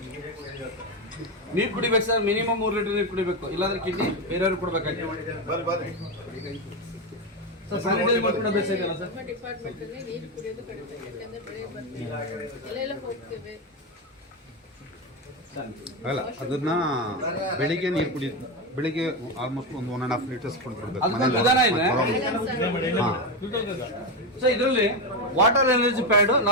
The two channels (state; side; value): normal; both; correlation 0.12